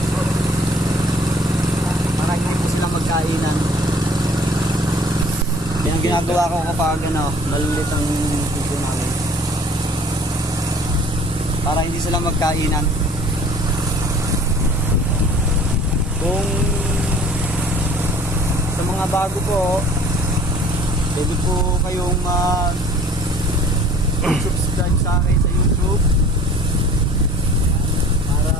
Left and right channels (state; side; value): normal; both; correlation 0.50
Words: para hindi po silang magkainan. Yan ang ginagawa ko kapag malilit ang puso namin para hindi sila magkainan. Kung sa mga bago po, pwede po kayong subscribe sa akin sa YouTube para